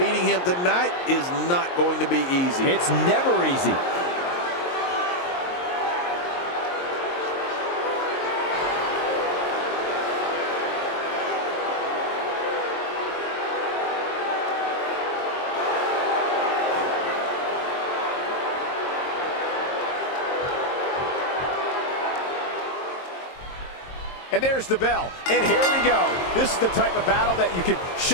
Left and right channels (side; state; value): right; late; 22 ms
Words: him tonight is not going to be easy. It's never easy. And there's the bell. And here we go. This is the type of battle that you can